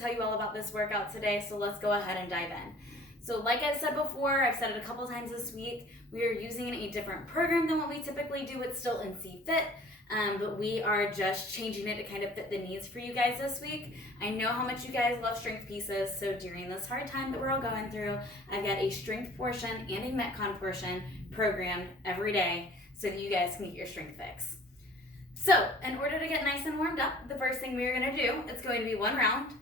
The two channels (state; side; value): normal; both; correlation 0.49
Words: tell you all about this workout today, so let's go ahead and dive in. So like I've said before, I've said it a couple times this week, we are using a different program than what we typically do. It's still NC Fit, but we are just changing it to kind of fit the needs for you guys this week. I know how much you guys love strength pieces, so during this hard time that we're all going through, I've got a strength portion and a Metcon portion programmed every day so that you guys can get your strength fix. So in order to get nice and warmed up, the first thing we're gonna do, it's going to be one round.